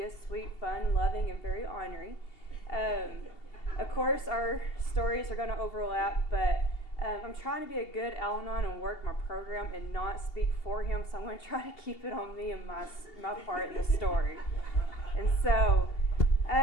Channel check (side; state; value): right; late; 2.8 ms